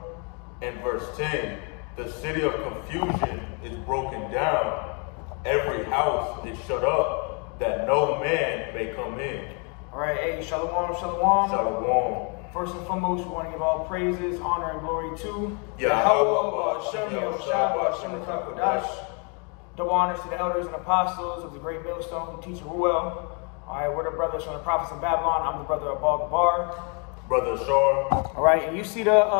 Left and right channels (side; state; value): right; quieter; 36.2 dB